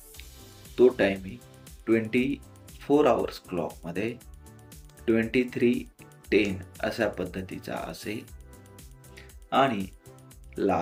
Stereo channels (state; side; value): identical; both; correlation 1.00